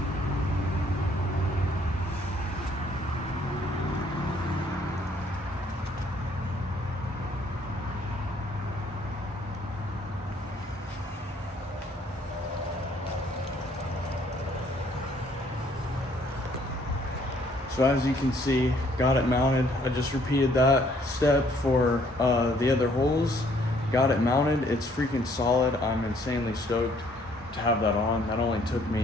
So as you can see, got it mounted. I just repeated that step for the other holes. Got it mounted. It's freaking solid. I'm insanely stoked to have that on. That only took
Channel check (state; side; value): normal; both; correlation 0.64